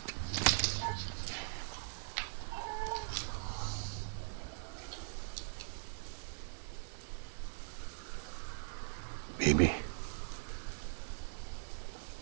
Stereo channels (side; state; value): left; silent; digital silence